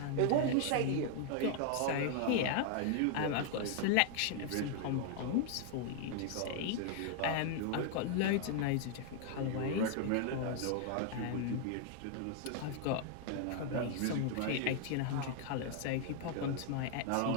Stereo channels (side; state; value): both; different; correlation 0.00